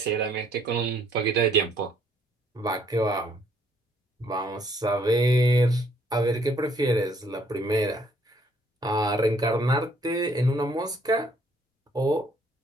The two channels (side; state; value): both; normal; correlation 0.65